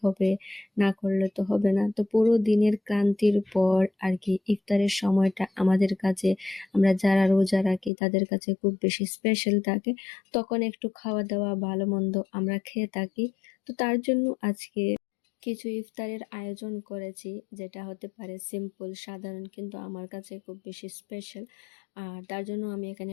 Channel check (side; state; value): right; drops out; at 7.9 s